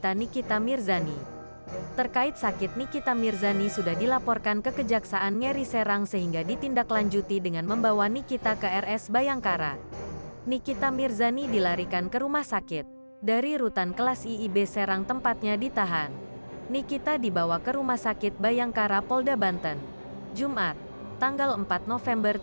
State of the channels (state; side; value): inverted; both; correlation -1.00